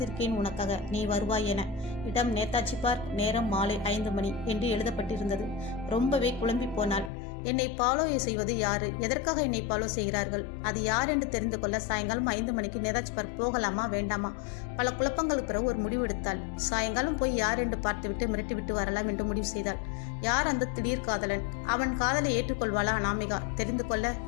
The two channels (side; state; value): right; drops out; at 7.1 s